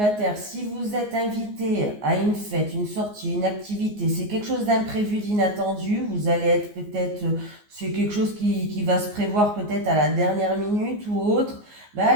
si vous êtes invité à une fête, une sortie, une activité, c'est quelque chose d'imprévu, d'inattendu, vous allez être peut-être, c'est quelque chose qui va se prévoir peut-être à la dernière minute ou autre, ben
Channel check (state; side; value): late; left; 14 ms